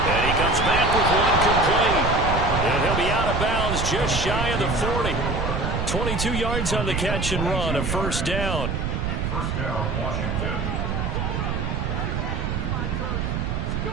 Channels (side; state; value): right; noise; rumble, 1 dB below the sound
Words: And he comes back with one complete. And he'll be out of bounds just shy of the 40. 22 yards on the catch and run, a first down. First down, Washington.